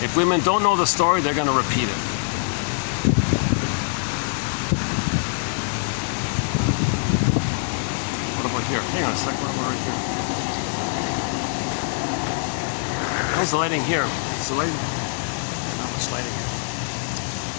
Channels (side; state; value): right; silent; digital silence